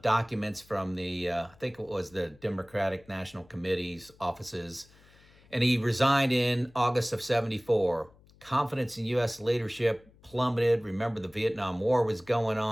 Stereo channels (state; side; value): noise; left; hum, 27 dB below the sound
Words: documents from the, I think it was the Democratic National Committee's offices. And he resigned in August of 74. Confidence in U.S. leadership plummeted. Remember, the Vietnam War was going